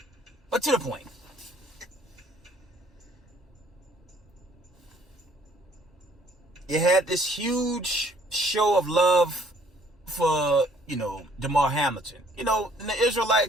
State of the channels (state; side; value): normal; both; correlation 0.61